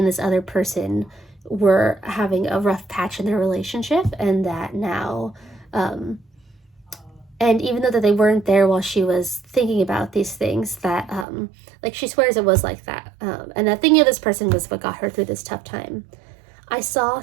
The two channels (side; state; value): left; drops out; at 11.2 s